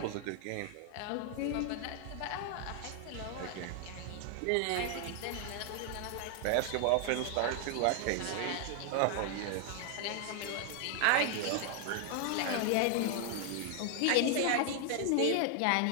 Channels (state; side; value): different; both; correlation 0.00